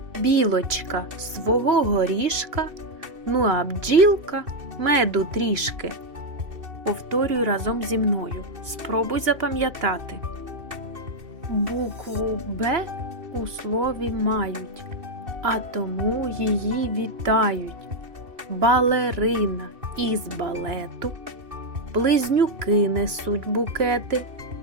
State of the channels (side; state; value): left; late; 2.6 ms